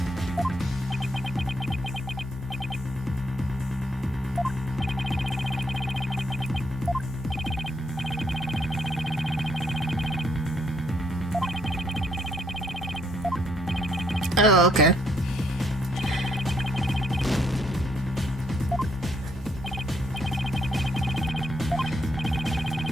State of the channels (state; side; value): normal; both; correlation 0.71